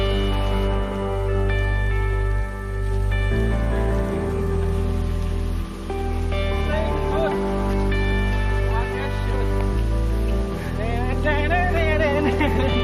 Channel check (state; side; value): identical; both; correlation 1.00